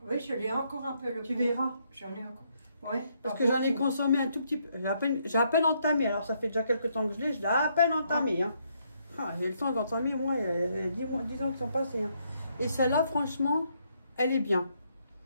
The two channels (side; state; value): both; inverted; correlation -0.73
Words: Oui, je l'ai encore un peu le Tu pot. verras. J'en ai encore. Ouais. Parce que j'en ai consommé un tout petit peu. J'ai à peine entamé. Alors ça fait déjà quelques temps que je l'ai à peine entamé. Hein. Ah, j'ai le temps d'entamer, moi, il y a 10 ans qui sont passés. Hein. Et celle-là, franchement, elle est bien.